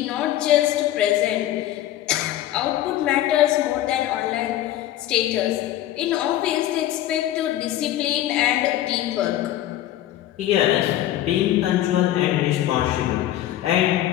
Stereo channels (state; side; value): quieter; right; 13.3 dB